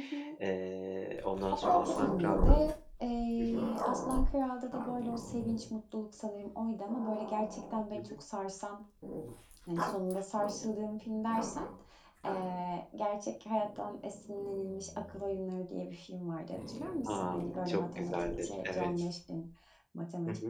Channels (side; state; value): both; identical; correlation 1.00